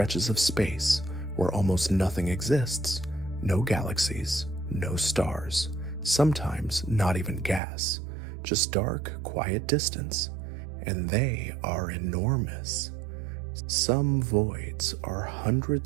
of space where almost nothing exists. No galaxies, no stars, sometimes not even gas, just dark, quiet distance, and they are enormous. Some voids are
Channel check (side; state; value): left; drops out; at 7.6 s